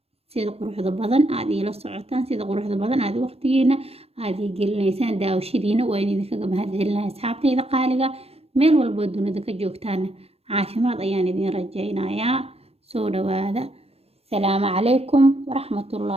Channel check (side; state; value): left; late; 0.29 ms